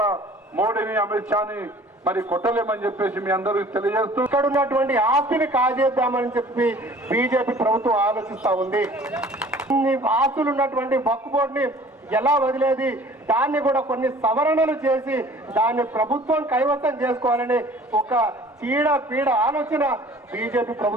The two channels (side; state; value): both; normal; correlation 0.49